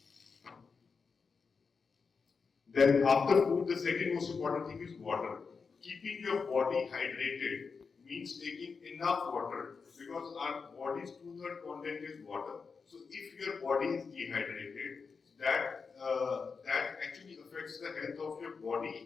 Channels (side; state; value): right; quieter; 5.2 dB